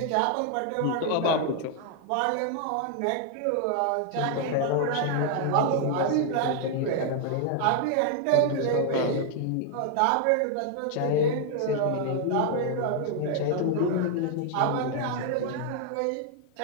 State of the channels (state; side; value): different; both; correlation 0.00